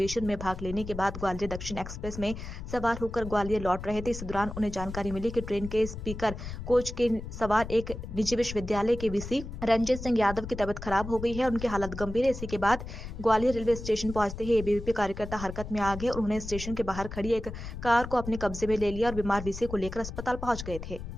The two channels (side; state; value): left; noise; rumble, 9 dB below the sound